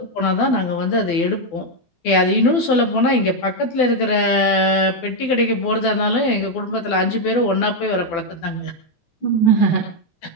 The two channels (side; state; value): right; late; 12 ms